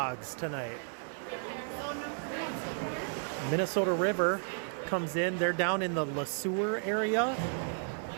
tonight. Minnesota River comes in. They're down in the LeSueur area.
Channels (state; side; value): silent; left; 56 dB below the other